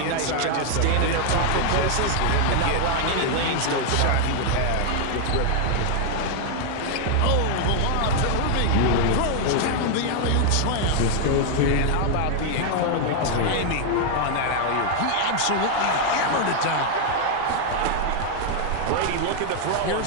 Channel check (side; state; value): both; different; correlation 0.00